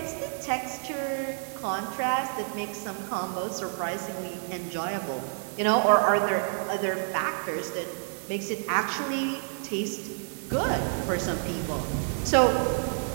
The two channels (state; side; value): silent; left; 59 dB below the other